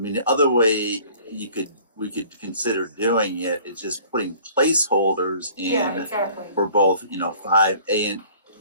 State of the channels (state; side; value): inverted; both; correlation -0.51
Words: the other way we could consider doing it is just putting placeholders in exactly. for both, 5A